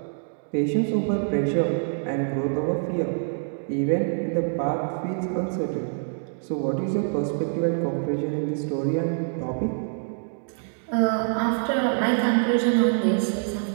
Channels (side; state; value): left; silent; digital silence